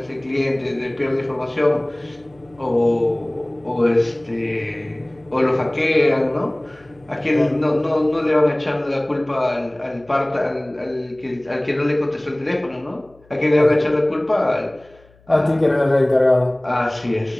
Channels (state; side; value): noise; left; hum, 30 dB below the sound